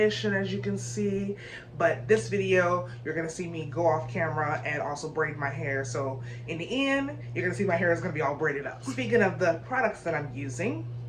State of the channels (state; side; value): identical; both; correlation 1.00